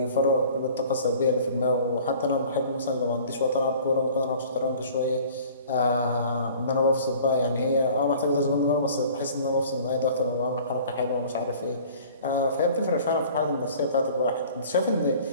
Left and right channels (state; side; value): inverted; both; correlation -0.48